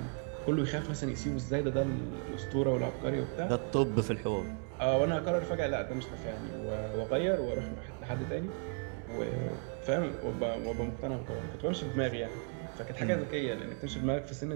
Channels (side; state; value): left; quieter; 39.1 dB